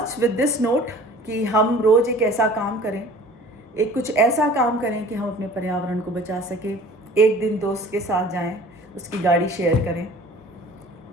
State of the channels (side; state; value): both; normal; correlation 0.47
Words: with this note कि हम रोज़ एक ऐसा काम करें, एक कुछ ऐसा काम करें कि हम अपने पर्यावरण को बचा सकें। एक दिन दोस्त के साथ जाएं, उसकी गाड़ी शेयर करें।